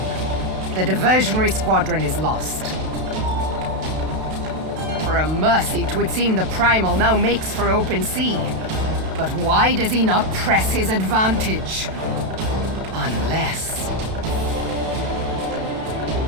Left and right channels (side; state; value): left; late; 32 ms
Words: The diversionary squadron is lost. For a mercy, 'twould seem the Primal now makes for open sea. But why does he not press his advantage? Unless...